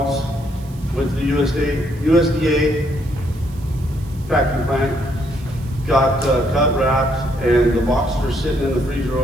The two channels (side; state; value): right; noise; hiss, 25 dB below the sound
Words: Went to the USDA packing plant, got cut, wrapped, and the boxes are sitting in the freezer